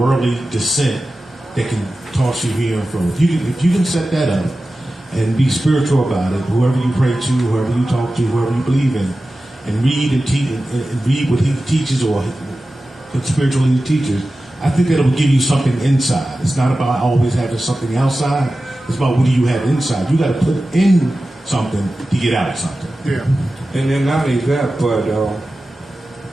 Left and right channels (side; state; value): both; normal; correlation 0.94